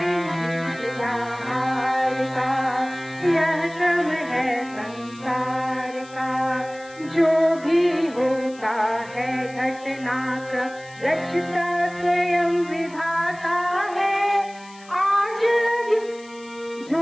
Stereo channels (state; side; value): noise; left; hiss, 23 dB below the sound